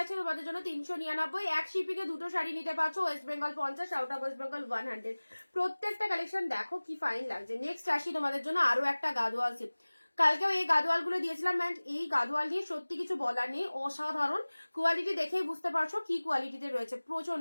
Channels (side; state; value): both; inverted; correlation -1.00